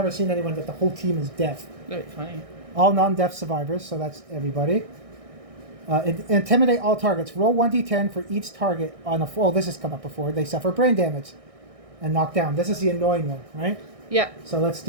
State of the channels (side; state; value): left; late; 1.6 ms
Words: seen anyone that the whole team is deaf. That'd be funny. All non-deaf survivors. So that's everybody. Intimidate all targets. Roll 1d10 for each target on a. Oh, this has come up before. They suffer brain damage and knock down. This is the annoying one, right? Yeah. So let's